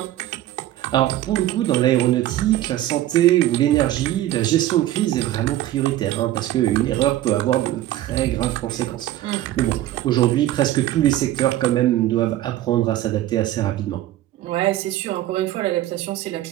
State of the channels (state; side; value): quieter; left; 14.0 dB